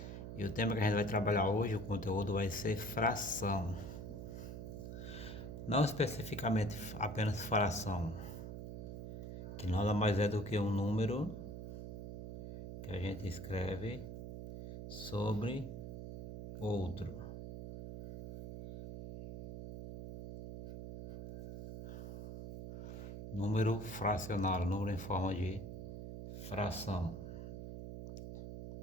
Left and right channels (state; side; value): noise; right; hum, 8 dB below the sound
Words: e o tema que a gente vai trabalhar hoje, o conteúdo vai ser fração. Não especificamente apenas fração, que nada mais é do que um número que a gente escreve sobre outro. Número fracionário, número em forma de fração.